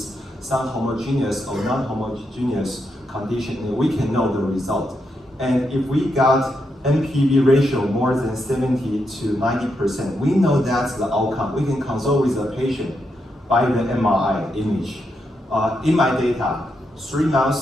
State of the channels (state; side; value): normal; both; correlation 0.82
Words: some homogeneous or non-homogeneous condition, and we can know the result. And if we got NPV ratio more than 70 to 90%, we know that's the outcome. We can consult with the patient by the MRI image. In my data, 3